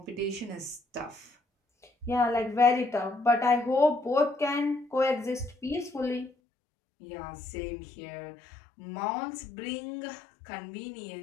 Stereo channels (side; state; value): right; drops out; at 6.3 s